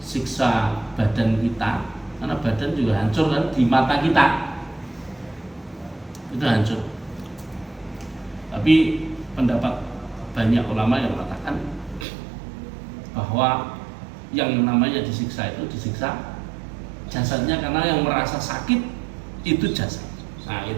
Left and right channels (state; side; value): drops out; left; at 12.1 s